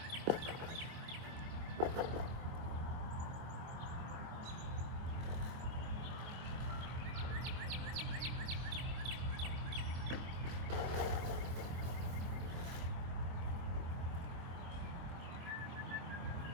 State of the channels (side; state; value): left; late; 24 ms